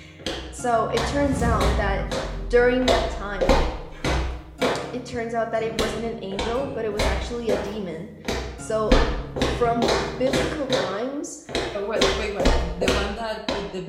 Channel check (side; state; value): both; identical; correlation 1.00